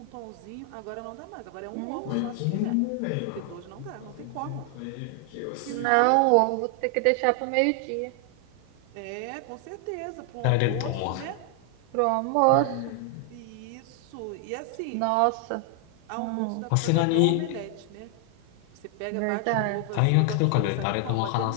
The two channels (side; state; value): both; different; correlation 0.00